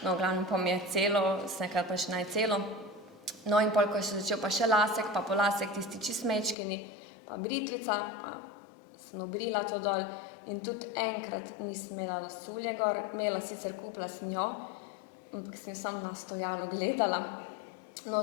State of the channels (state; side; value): drops out; right; at 6.6 s